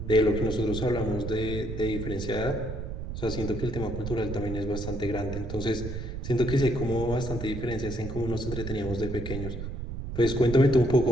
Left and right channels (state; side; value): noise; right; rumble, 6 dB below the sound